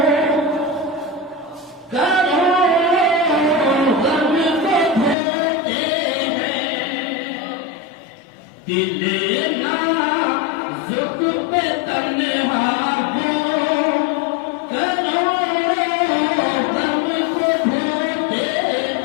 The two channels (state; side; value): drops out; right; at 5.2 s